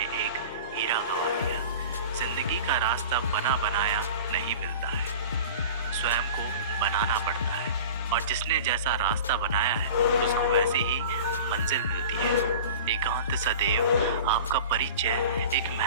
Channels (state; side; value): inverted; both; correlation -0.37